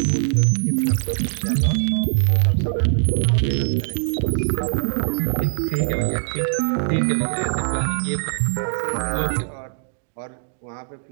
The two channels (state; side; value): silent; left; digital silence